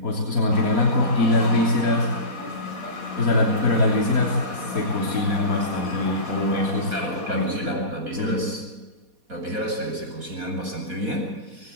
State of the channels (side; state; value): left; late; 4.2 ms